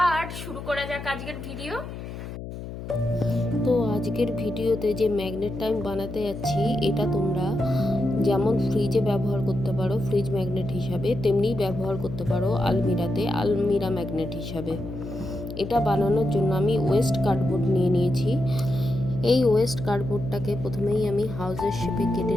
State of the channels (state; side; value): noise; left; hum, 9 dB below the sound